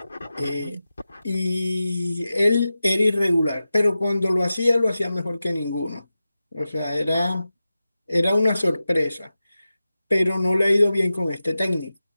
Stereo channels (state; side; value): inverted; both; correlation -0.94